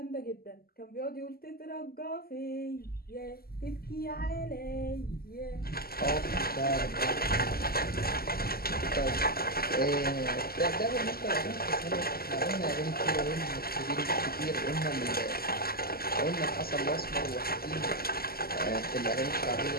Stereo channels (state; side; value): late; right; 0.44 ms